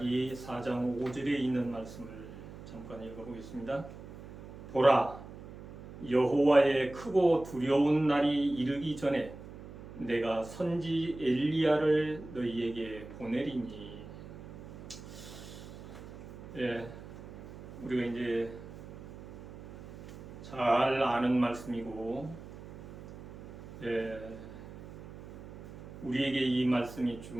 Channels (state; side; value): noise; right; hum, 14 dB below the sound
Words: 4장 5절에 있는 말씀을 잠깐 읽어보겠습니다. 보라, 여호와의 크고 두려운 날이 이르기 전에 내가 선지 엘리야를 너희에게 보내리니. 우리가 이제 잘 아는 말씀이고, 우리에게 이 말씀이